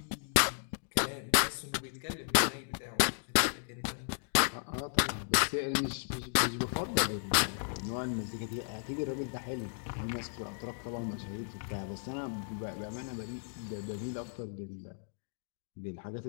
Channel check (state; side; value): silent; right; digital silence